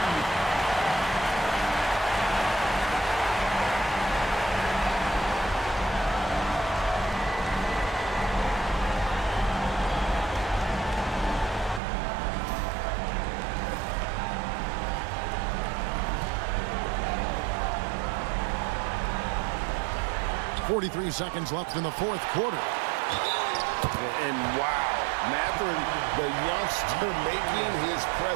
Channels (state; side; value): drops out; left; at 11.8 s